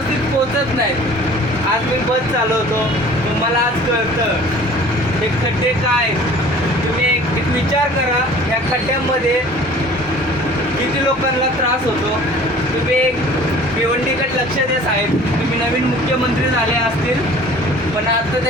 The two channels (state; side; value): normal; both; correlation 0.47